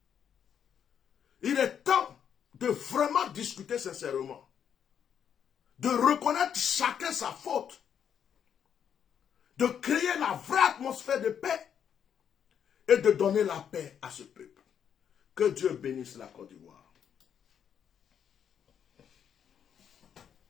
il est temps de vraiment discuter sincèrement, de reconnaître chacun sa faute, de créer la vraie atmosphère de paix et de donner la paix à ce peuple. Que Dieu bénisse la Côte d'Ivoire.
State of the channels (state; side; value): quieter; right; 8.4 dB